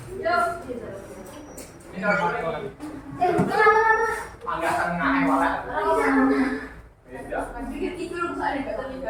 Yuk. Agak tengah ya, Pak. Dikit itu lu bisa nggak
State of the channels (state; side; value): identical; both; correlation 1.00